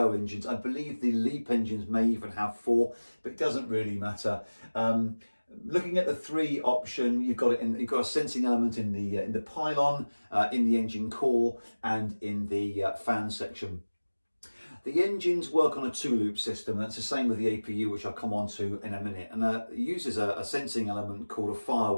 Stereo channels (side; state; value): both; inverted; correlation -1.00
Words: engines, I believe the LEAP engines may even have four, but it doesn't really matter. Looking at the three option, you've got a sensing element in the pylon, in the engine core, and in the fan section. The engines work on a two-loop system. That's the same with the APU, which I'll come on to in a minute. And it uses a sensing element called a